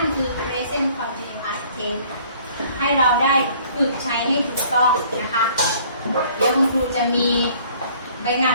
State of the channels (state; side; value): inverted; both; correlation -0.56